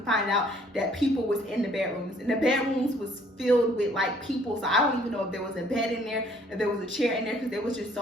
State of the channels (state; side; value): normal; both; correlation 0.61